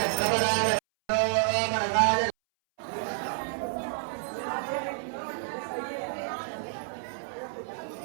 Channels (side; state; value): left; silent; 58 dB below the other